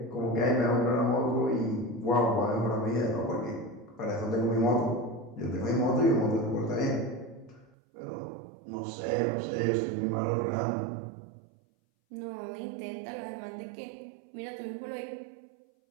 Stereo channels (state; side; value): drops out; left; at 7.7 s